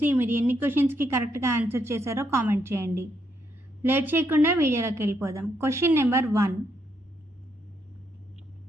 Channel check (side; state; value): both; normal; correlation 0.76